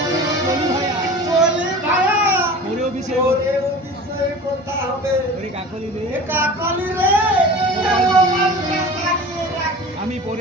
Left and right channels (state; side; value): normal; both; correlation 0.38